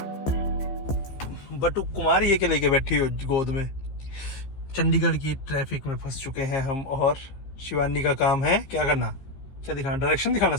बटू कुमार ये के लेके बैठी हो गोद में। चंडीगढ़ की ट्रैफिक में फंस चुके हैं हम, और शिवानी का काम है क्या करना, क्या दिखाना, डायरेक्शन दिखाना,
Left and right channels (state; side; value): late; right; 15 ms